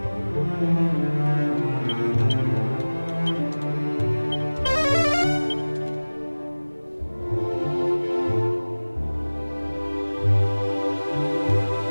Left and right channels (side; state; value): both; inverted; correlation -1.00